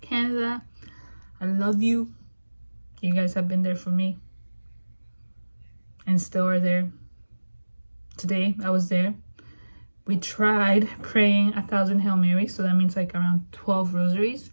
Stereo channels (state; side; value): inverted; both; correlation -1.00